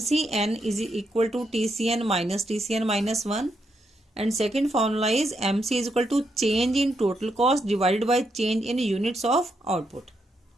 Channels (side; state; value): both; normal; correlation 0.80